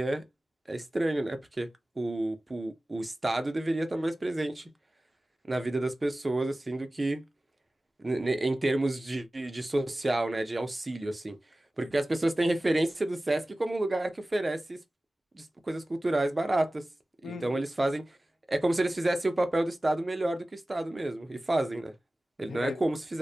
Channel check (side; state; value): both; normal; correlation 0.97